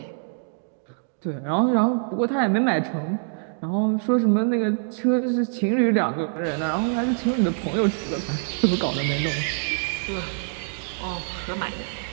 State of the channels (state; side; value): silent; left; digital silence